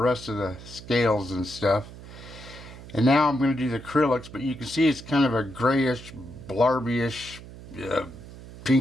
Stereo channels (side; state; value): right; noise; hum, 16 dB below the sound